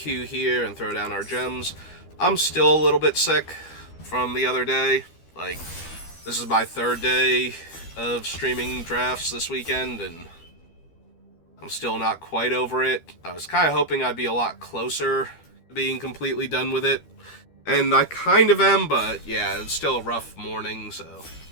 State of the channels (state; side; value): late; right; 12 ms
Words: here and throw down our gems. I'm still a little bit sick from the other day. This is my third day of streaming drafts this weekend, and I'm still not quite over it. I was kind of hoping I'd be a lot closer to being completely done with it. And I kind of am, but yeah, it's still a rough morning, so...